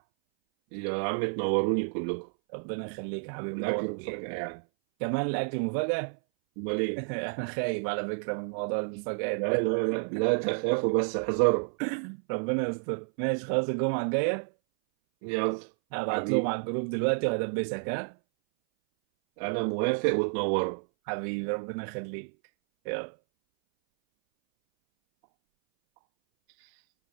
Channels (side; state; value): left; silent; 58 dB below the other